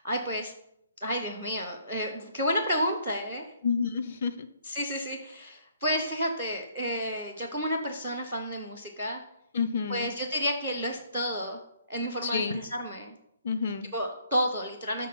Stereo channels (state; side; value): inverted; both; correlation -0.64